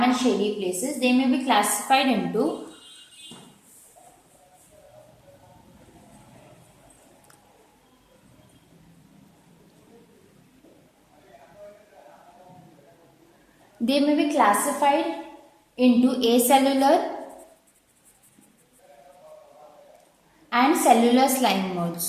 and shady places. They may be classified into acellular and cellular slime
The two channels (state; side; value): identical; both; correlation 1.00